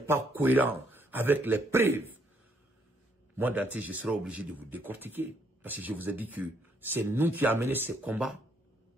cohérent avec les preuves, moi, Dante, je serai obligé de vous décortiquer. Parce que je vous ai dit que c'est nous qui avons mené ces combats,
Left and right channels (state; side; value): normal; both; correlation 0.70